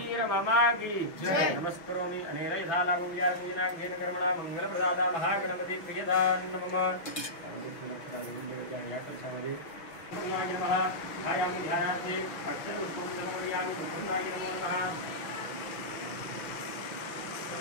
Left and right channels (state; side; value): late; right; 5.9 ms